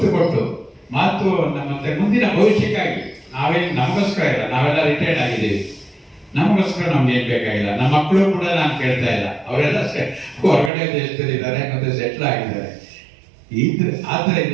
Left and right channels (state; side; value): drops out; left; at 10.7 s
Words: ಕೊಟ್ಟು ಮಾತು ಮತ್ತೆ ಮುಂದಿನ ಭವಿಷ್ಯಕ್ಕಾಗಿ ನಾವೇನು ನಮಗೋಸ್ಕರ ಇಲ್ಲ, ನಾವೆಲ್ಲ ರಿಟೈರ್ಡ್ ಆಗಿದ್ದೀವಿ, ನಮಗೋಸ್ಕರ ನಮ್ಗೆ ಏನ್ ಬೇಕಾಗಿಲ್ಲ. ನಮ್ಮ ಮಕ್ಕಳು ಕೂಡ ನಾನು ಕೇಳ್ತಾ ಇಲ್ಲ, ಅವರೆಲ್ಲ ಹೊರಗಡೆ ದೇಶದಲ್ಲಿ ಇದ್ದಾರೆ ಮತ್ತೆ ಸೆಟ್ಲ್ ಆಗಿದ್ದಾರೆ. ಆದ್ದರಿಂದ